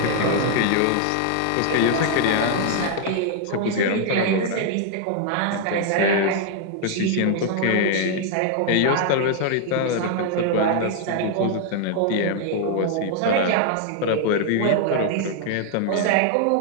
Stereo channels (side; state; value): both; different; correlation 0.00